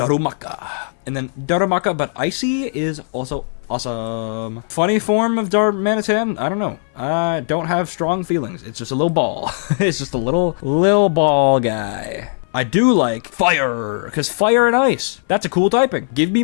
And then Darumaka, but Icy is also awesome. Funny form of Darmanitan? I don't know. I don't have strong feelings. It's just a little ball. It's just a little ball guy. I do like Fire, because Fire and Ice, that's a cool typing. Give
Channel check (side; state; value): right; silent; 59 dB below the other